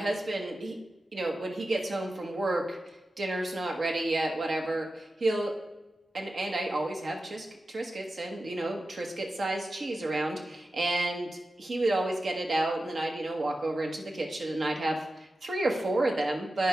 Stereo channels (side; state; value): both; normal; correlation 0.93